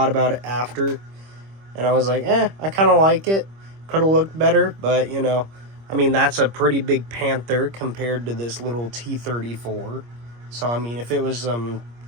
about it after, and I was like, I kind of like it. Could have looked better, but, you know, I mean, that's a pretty big Panther compared to this little T-34. So, I mean, if it was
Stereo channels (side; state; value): left; late; 25 ms